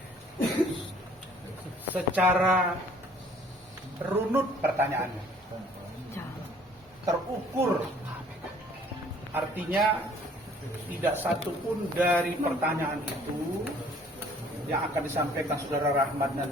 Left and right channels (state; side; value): normal; both; correlation 0.56